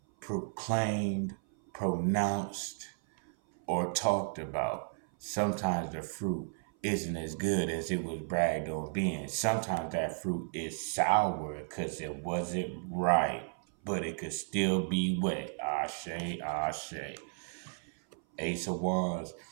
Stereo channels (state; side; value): silent; left; 55 dB below the other